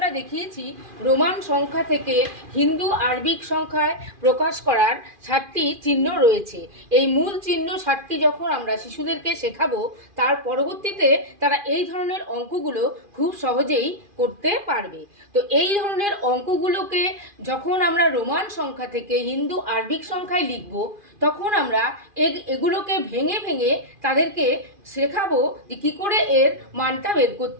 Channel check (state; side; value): late; left; 2.4 ms